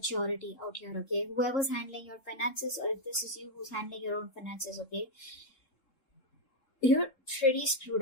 out here, okay? Whoever's handling your finances, or if this is you who's handling your own finances, okay? You're pretty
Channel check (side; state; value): right; late; 3.7 ms